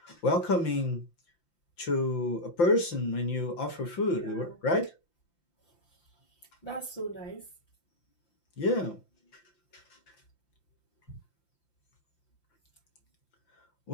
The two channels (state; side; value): late; right; 5.8 ms